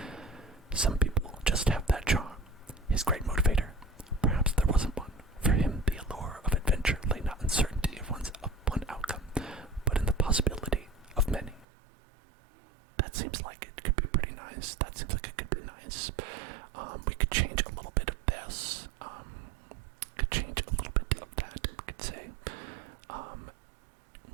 Some people just have that charm. His great motivator. Perhaps there wasn't one. For him, the allure of adventure lay not in certainty of one outcome, but in the possibility of many. That seems like it could be pretty nice. That seems like it could be nice. We could change a little bit of this. Could change a little bit of that. We could say,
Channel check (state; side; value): drops out; left; at 11.7 s